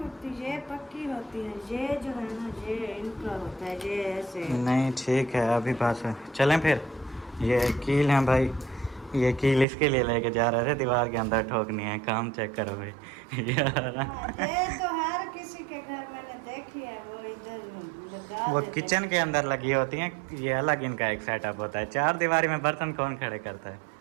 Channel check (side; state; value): left; drops out; at 9.7 s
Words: ये पक्की होती है। ये जो है ना, ये इनका होता है, ये ऐसे नहीं ठीक है, अभी पास है। चलें फिर। ये कील है भाई, ये कील इसके लिए लेके जा रहे थे, दीवार के अंदर ठोकनी है। काम चेक करो भाई यार। हाँ, ये तो हर किसी के घर मैंने देखी है, वो इधर लगा वो देते किचन के अंदर लगी होती हैं, ये अलग इनका एक सेटअप होता है। चार दीवारी में बर्तन कौन खड़े करता है?